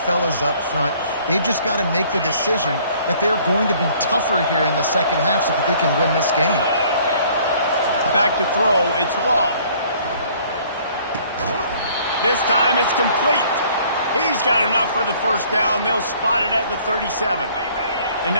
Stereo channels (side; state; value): both; inverted; correlation -0.57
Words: up front. They've just got to make the decision that they're going to be tougher here in the second half so that they can win this game. Back to throw, it's Law. This time it's complete. He's got enough for the first down. They'll spot it at the 37. And